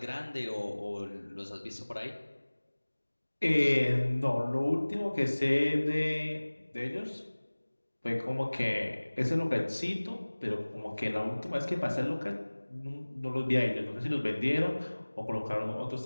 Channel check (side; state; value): both; inverted; correlation -1.00